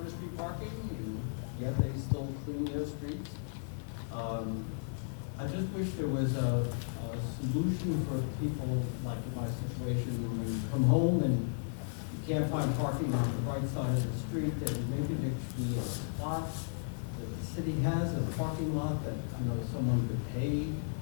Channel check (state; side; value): silent; right; digital silence